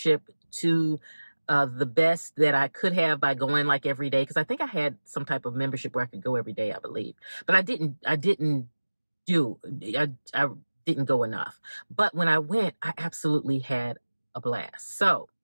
to the best that I could have by going like every day, because I think I had some type of membership where I could go every day, I believe. But I didn't go enough. But when I went, I absolutely had a blast. So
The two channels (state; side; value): inverted; both; correlation -1.00